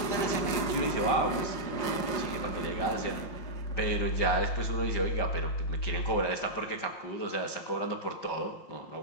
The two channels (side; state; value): right; late; 5.6 ms